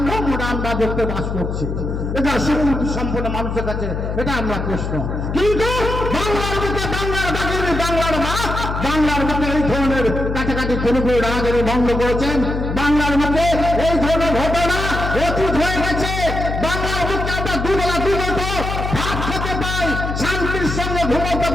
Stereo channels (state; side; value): noise; left; hum, 3 dB below the sound